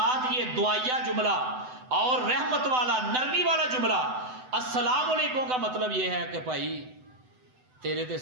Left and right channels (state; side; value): late; left; 7.9 ms